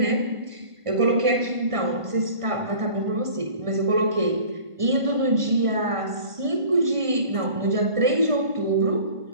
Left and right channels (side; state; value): left; late; 1.5 ms